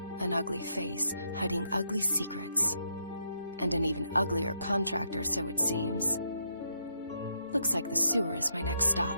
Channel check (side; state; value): both; inverted; correlation -0.77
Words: An ugly face, hiding ugly secrets. And an even uglier contractor, so it seems. Looks like the sewer is my next stop.